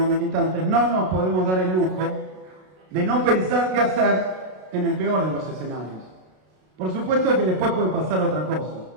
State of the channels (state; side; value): late; left; 32 ms